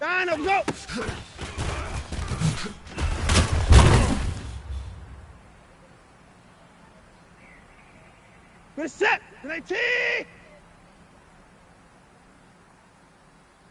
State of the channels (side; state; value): both; identical; correlation 1.00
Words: and go! Reset! Grenade T!